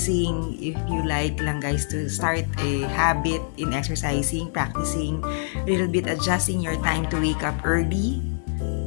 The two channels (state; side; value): silent; right; digital silence